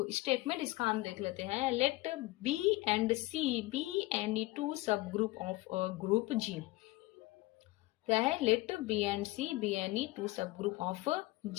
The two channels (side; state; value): right; quieter; 20.0 dB